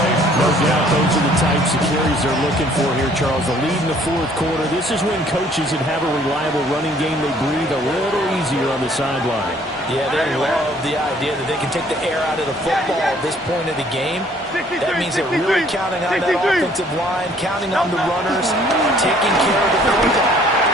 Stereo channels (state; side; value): normal; both; correlation 0.59